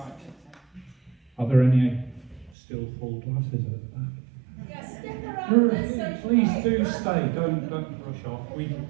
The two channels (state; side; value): drops out; left; at 2.6 s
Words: Are there any still full glasses at the back? Yeah, stick around. Let's socialise. Please do stay. Don't rush off.